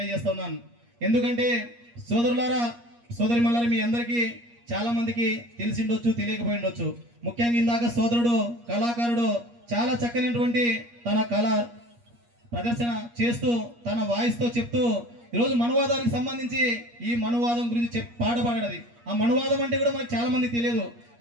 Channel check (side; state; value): left; late; 8.5 ms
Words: ఎందుకంటే సోదరులారా సోదరిమల్లారా, మీ అందరికీ చాలా మందికి తెలిసిండొచ్చు, తెలియకపోయి ఉండొచ్చు. ముఖ్యంగా ఇందాక సోదరుడు కళాకారుడు చాలా చక్కనటువంటి తన కళ ప్రదర్శన చేస్తూ తన వాయిస్తో చెప్తూ ఈరోజు మనువాదానికి సంబంధించి ఈ మనువాదం గురించి పాట పాడేది. ఆ మనువాదం అంటే కూడా మనకు చాలా మంది తెలియదు.